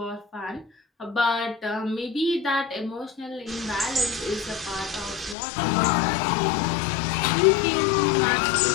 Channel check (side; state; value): right; drops out; at 5.4 s